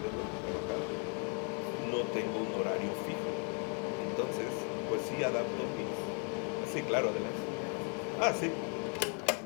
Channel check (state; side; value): quieter; right; 39.3 dB